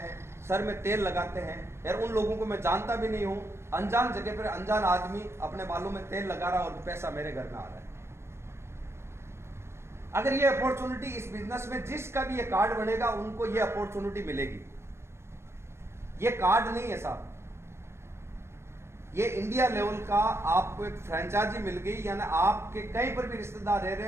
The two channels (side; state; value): left; late; 0.13 ms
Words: सर में तेल लगाते हैं। यार उन लोगों को मैं जानता भी नहीं हूं, अनजान जगह पर अनजान आदमी अपने बालों में तेल लगा रहा और पैसा मेरे घर में आ रहा है। अगर ये अपॉर्चुनिटी इस बिजनेस में जिसका भी ये कार्ड बनेगा उनको ये अपॉर्चुनिटी मिलेगी। ये कार्ड नहीं है साहब, ये इंडिया लेवल का आपको एक फ्रेंचाइजी मिल गई, यानी आपके कहीं पर भी रिश्तेदार रह रहे